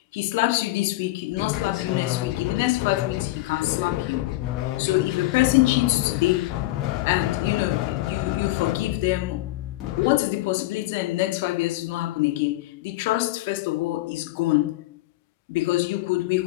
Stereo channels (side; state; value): right; quieter; 17.8 dB